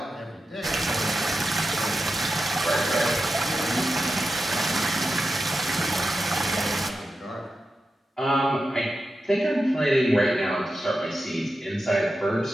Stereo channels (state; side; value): normal; both; correlation 0.90